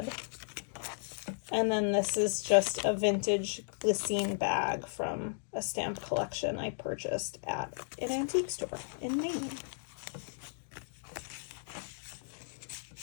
And then this is just a vintage glycine bag from a stamp collection I purchased at an antique store in Maine.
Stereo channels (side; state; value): right; silent; digital silence